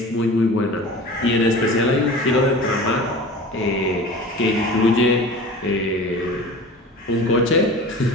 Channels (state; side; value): normal; both; correlation 0.37